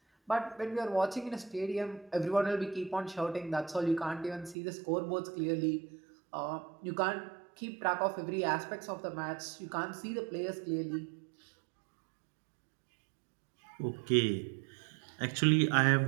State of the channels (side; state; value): left; drops out; at 4.5 s